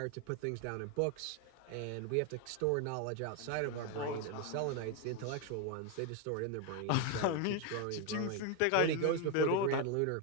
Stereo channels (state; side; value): different; both; correlation 0.02